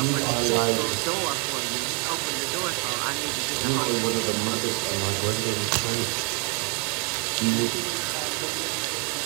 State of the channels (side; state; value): left; quieter; 35.0 dB